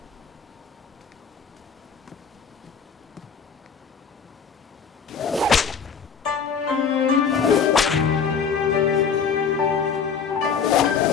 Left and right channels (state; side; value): quieter; right; 6.2 dB